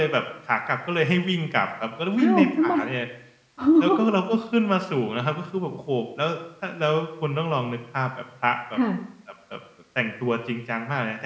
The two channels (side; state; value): both; identical; correlation 1.00